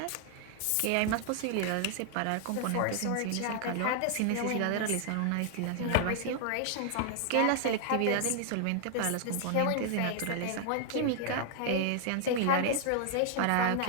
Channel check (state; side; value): different; both; correlation 0.00